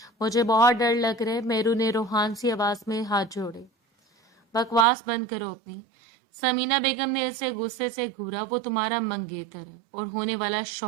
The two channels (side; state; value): left; drops out; at 4.9 s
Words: मुझे बहुत डर लग रहा है। मेहरू ने रूहान सी आवाज में हाथ जोड़े। बकवास बंद करो अपनी। समीना बेगम ने इसे गुस्से से घूरा। वो तुम्हारा मंगेतर है और होने वाला